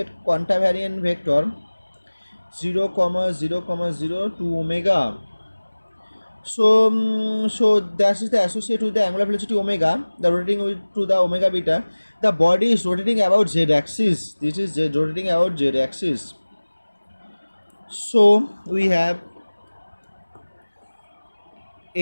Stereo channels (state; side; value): inverted; both; correlation -1.00